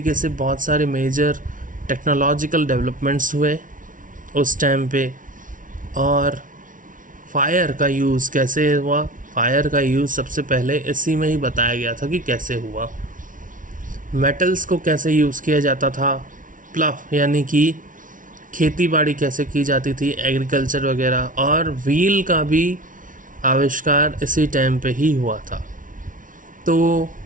से बहुत सारे मेजर टेक्नोलॉजिकल डेवलपमेंट्स हुए उस टाइम पे, और फायर का यूज़ कैसे हुआ। फायर का यूज़ सबसे पहले इसी में ही बताया गया था कि कैसे हुआ। मेटल्स को कैसे यूज़ किया जाता था, प्लफ यानी कि खेती बाड़ी कैसे की जाती थी, एग्रीकल्चर वगैरह, और व्हील का भी आविष्कार इसी टाइम पे ही हुआ था। तो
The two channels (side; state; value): left; late; 0.38 ms